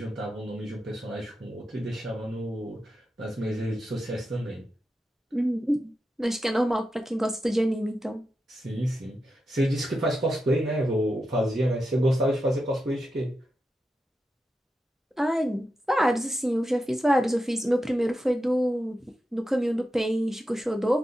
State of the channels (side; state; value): both; normal; correlation 0.89